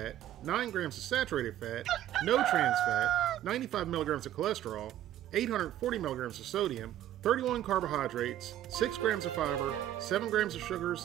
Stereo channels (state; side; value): quieter; left; 12.4 dB